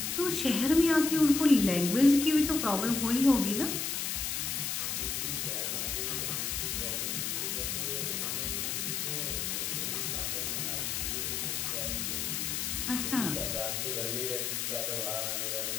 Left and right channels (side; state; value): left; noise; hiss, 1 dB below the sound